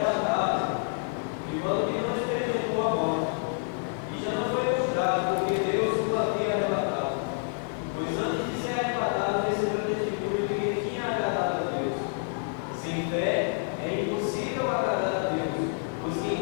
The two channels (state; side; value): silent; right; 59 dB below the other